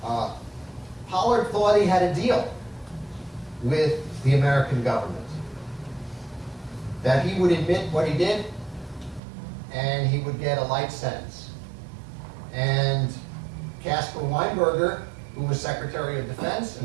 Pollard thought he had a deal with the American government, that he would admit what he did and he would get a light sentence. And Caspar Weinberger, who was Secretary of Defense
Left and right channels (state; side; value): drops out; left; at 9.2 s